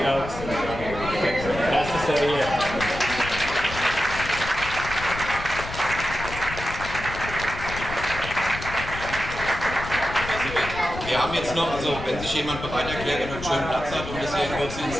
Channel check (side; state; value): left; noise; rumble, 9 dB below the sound